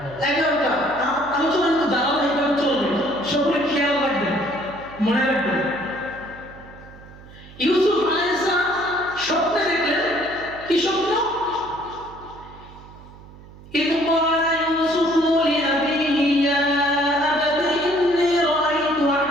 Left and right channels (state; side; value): noise; right; hum, 20 dB below the sound